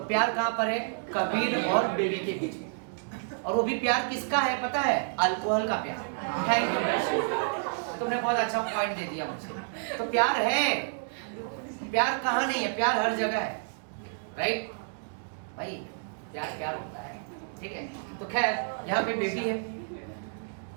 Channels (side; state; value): left; silent; digital silence